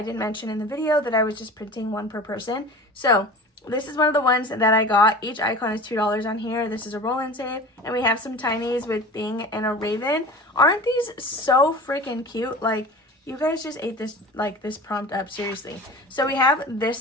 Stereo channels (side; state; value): both; normal; correlation 0.37